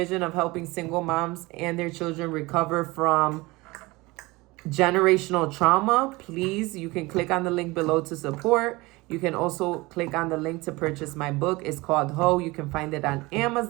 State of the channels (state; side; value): quieter; left; 22.4 dB